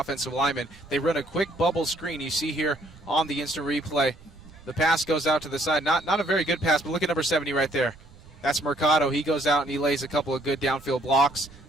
lineman. They run a quick bubble screen. You see here on the instant replay. The pass goes out to the side. Not a very good pass, but look at number 70 right there. That's Mercado. He goes out and he lays a couple of good downfield blocks,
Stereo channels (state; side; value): noise; right; rumble, 22 dB below the sound